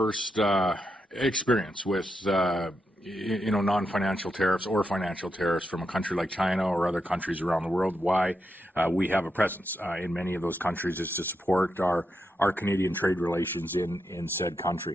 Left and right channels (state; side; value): normal; both; correlation 0.84